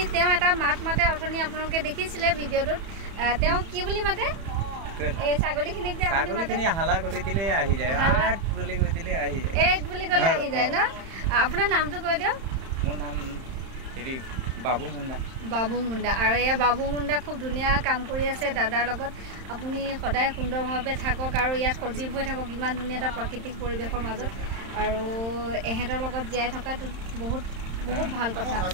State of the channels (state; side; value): late; left; 31 ms